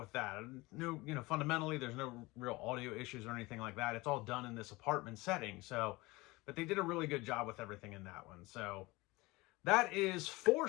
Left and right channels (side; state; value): right; quieter; 22.2 dB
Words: that. No, fundamentally, there's no real audio issues or anything like that. It's all done in this apartment setting. So, but they did a really good job with everything in that one. So that is 4